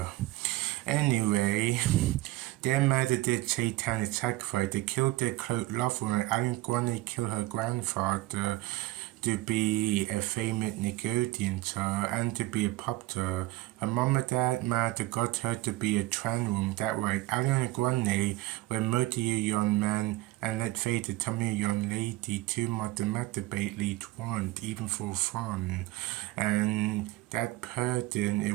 Anyway, their mother did satanic sacrifice. They killed their close lover, and Ariana Grande killed her grandfather to be a famous Nickelodeon star and to be a pop star. Her mom and dad might got her to be a trans woman. That right. Ariana Grande were multi young man, and let's face it, some young lady too much masturbate want, even for fun. And that person,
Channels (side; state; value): left; quieter; 18.1 dB